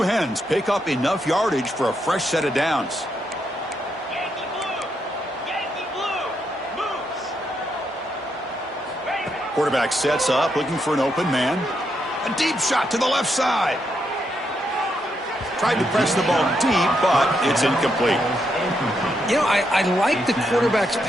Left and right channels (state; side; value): normal; both; correlation 0.80